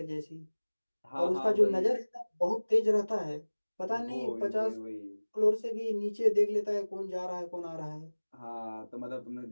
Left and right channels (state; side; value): inverted; both; correlation -1.00